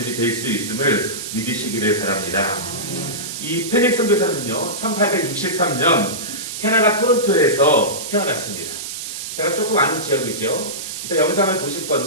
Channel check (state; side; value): noise; right; hiss, 7 dB below the sound